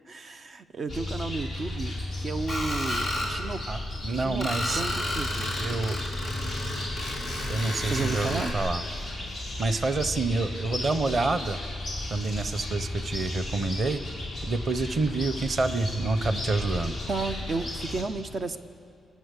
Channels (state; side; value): normal; both; correlation 0.84